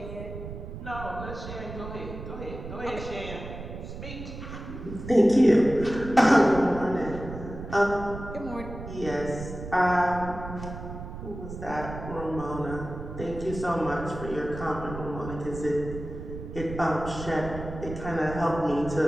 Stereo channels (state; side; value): noise; right; rumble, 10 dB below the sound